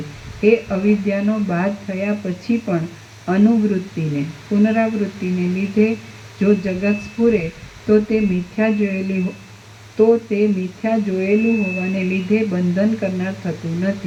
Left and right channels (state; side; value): identical; both; correlation 1.00